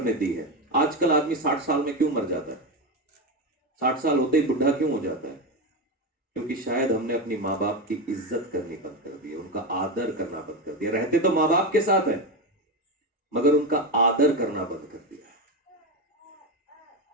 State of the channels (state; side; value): normal; both; correlation 0.15